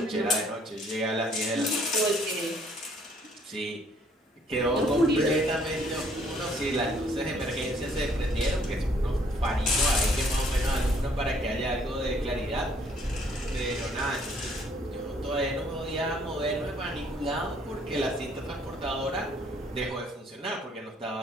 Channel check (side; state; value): both; normal; correlation 0.63